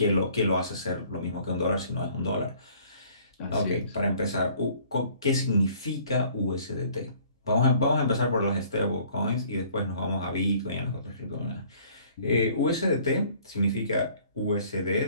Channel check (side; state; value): both; inverted; correlation -0.56